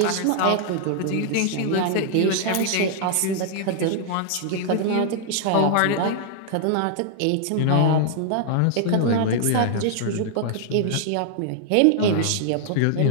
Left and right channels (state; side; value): different; both; correlation -0.01